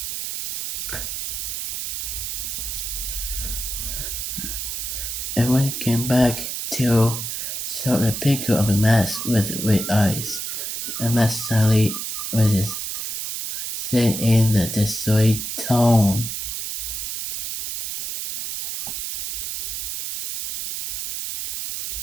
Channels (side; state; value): right; noise; hiss, 4 dB below the sound